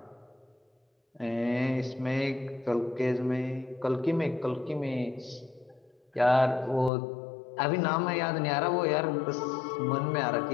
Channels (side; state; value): right; drops out; at 6.9 s